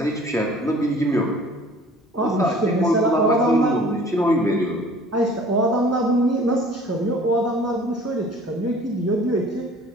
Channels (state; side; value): normal; both; correlation 0.49